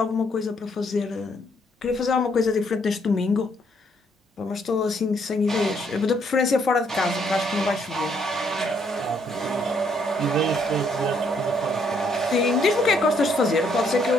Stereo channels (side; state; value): both; normal; correlation 0.70